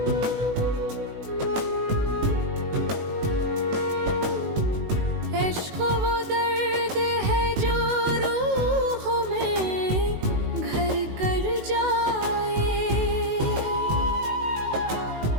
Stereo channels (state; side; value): late; left; 18 ms